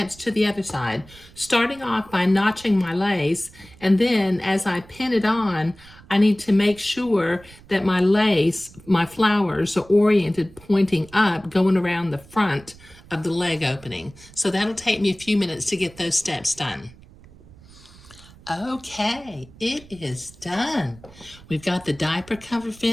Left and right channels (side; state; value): right; noise; rumble, 23 dB below the sound